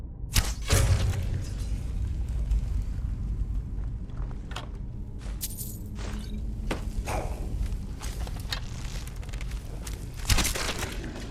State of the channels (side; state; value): both; identical; correlation 1.00